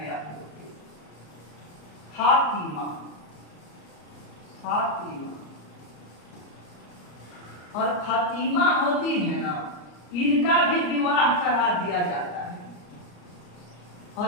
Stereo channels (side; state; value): right; late; 34 ms